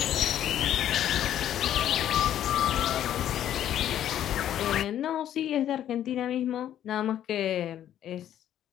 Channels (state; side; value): quieter; right; 11.1 dB